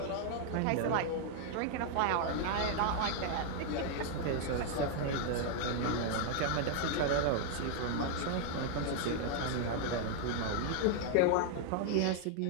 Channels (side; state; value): both; different; correlation 0.00